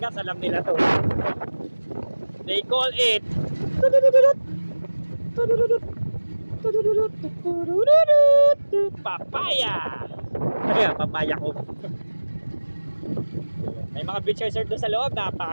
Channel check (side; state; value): both; inverted; correlation -1.00